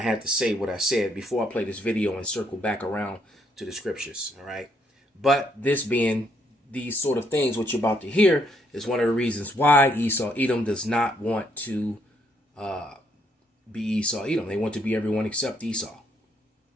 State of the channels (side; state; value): both; normal; correlation 0.72